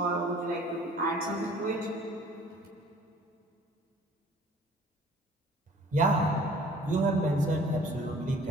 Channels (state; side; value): normal; both; correlation 0.52